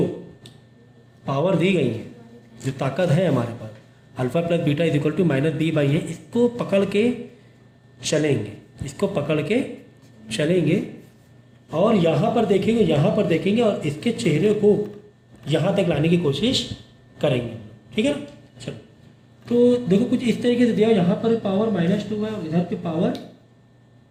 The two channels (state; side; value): identical; both; correlation 1.00